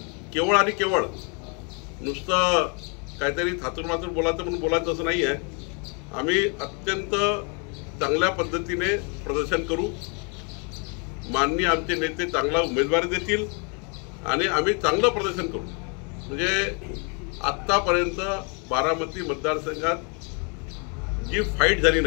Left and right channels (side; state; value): right; quieter; 35.7 dB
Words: केवळ आणि केवळ नुसतं काहीतरी थातूरमातूर बोलायचं म्हणून बोलायचं असं नाही आहे. आम्ही अत्यंत चांगल्या पद्धतीने प्रदर्शन करू. माननीय आमचे नेते चांगला उमेदवारी देतील आणि आम्ही चांगलं प्रदर्शन करू. म्हणजे आत्तापर्यंत बारामती मतदारसंघात जी फाईट झाली